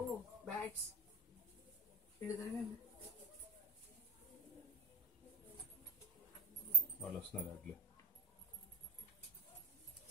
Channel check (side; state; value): both; normal; correlation 0.19